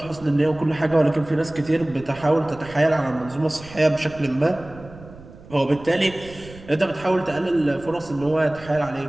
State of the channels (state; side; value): noise; right; rumble, 19 dB below the sound